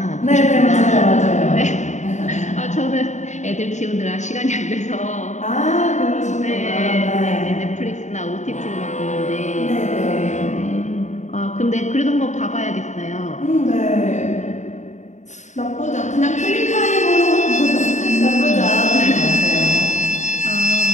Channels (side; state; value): right; late; 0.34 ms